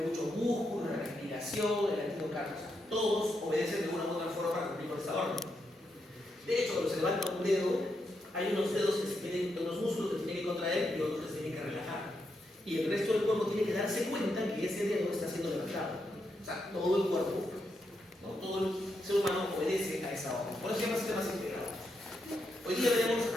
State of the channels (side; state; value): both; normal; correlation 0.82